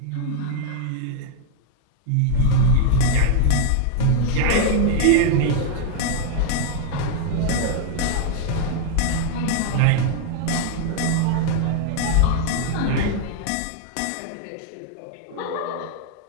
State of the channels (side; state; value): both; different; correlation 0.00